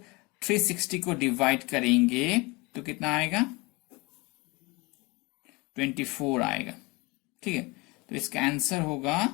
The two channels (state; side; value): quieter; right; 25.0 dB